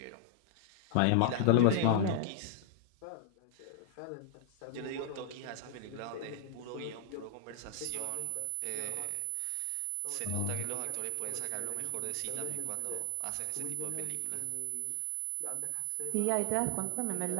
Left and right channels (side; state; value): both; different; correlation -0.01